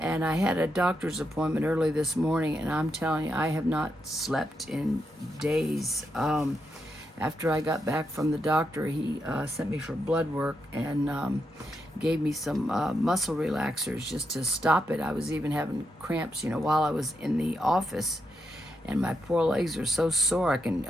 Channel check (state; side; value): normal; both; correlation 0.83